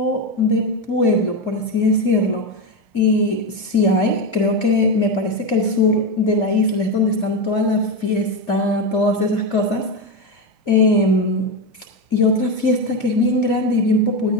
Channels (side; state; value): right; late; 2.4 ms